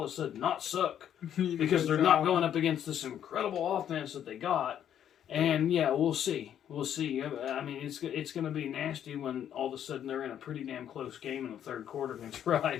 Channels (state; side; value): quieter; right; 9.9 dB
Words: of a sudden not suck because they're not going up against this incredible offense that they got. And yeah, we'll see. We'll see. I mean, it's going to be nasty when all of a sudden they're in a pretty damn close game in the third quarter against